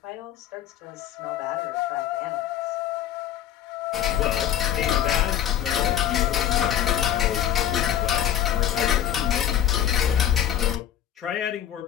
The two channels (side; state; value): right; quieter; 10.7 dB